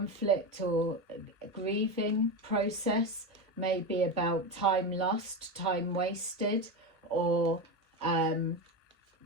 or grieving process, maybe about time lost, time wasted, or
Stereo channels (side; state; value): both; normal; correlation 0.16